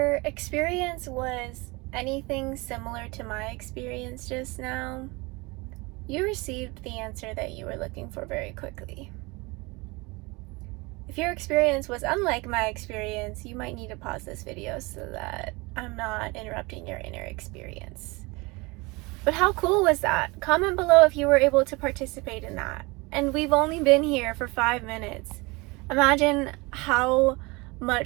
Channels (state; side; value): quieter; left; 25.3 dB